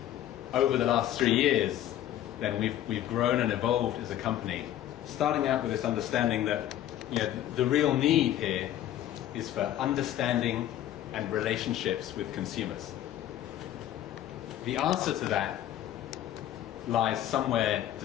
Over the last 3 years, then we've grown and evolved as a company, starting out with this understanding that the real need here is for understanding and relationships with consumers. The answer to that lies somewhere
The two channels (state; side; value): quieter; right; 12.3 dB